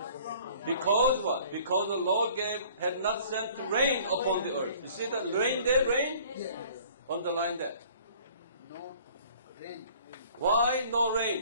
Because what? Because the Lord had not sent rain upon the earth. You see the rain there, rain? Yes. Underline that. No rain. Why no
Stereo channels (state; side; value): inverted; both; correlation -0.52